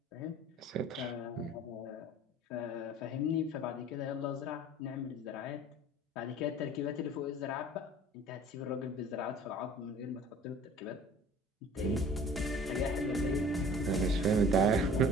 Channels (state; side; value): normal; both; correlation 0.46